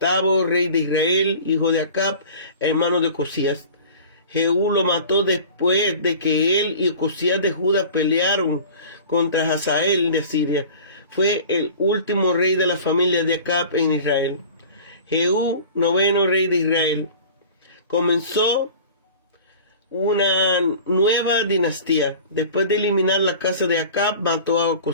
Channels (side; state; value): both; inverted; correlation -0.41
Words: rey de Israel, hijo de Acab, hermano de Ocosías. Jehú lo mató después de que él y Ocosías de Judá pelearon contra Hazael de Siria. Fue el último rey de la familia de Acab en Israel. Jehú, noveno rey de Israel, comenzó una nueva dinastía. Después de eliminar la casa de Acab, mató a